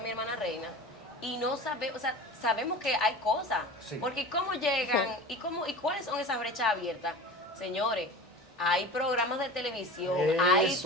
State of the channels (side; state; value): both; normal; correlation 0.34